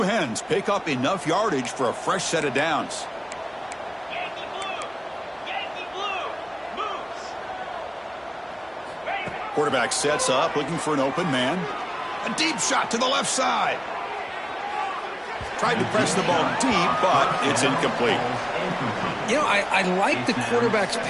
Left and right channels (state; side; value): identical; both; correlation 1.00